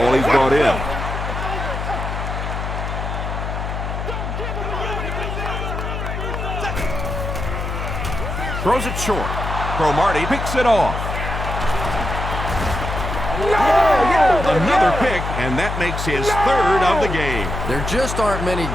he's brought in. Throws it short. Cromartie picks it off. Another pick, and that makes his 3rd of the game. There just aren't many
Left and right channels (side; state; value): left; noise; hum, 4 dB below the sound